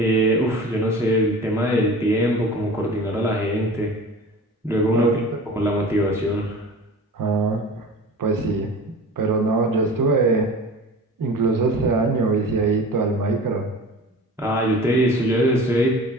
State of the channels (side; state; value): both; normal; correlation 0.39